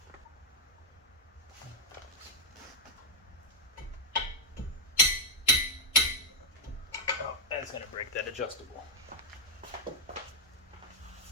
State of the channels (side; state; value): both; normal; correlation 0.01